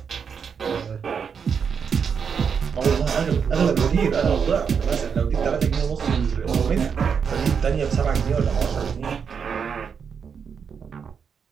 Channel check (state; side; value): quieter; left; 6.6 dB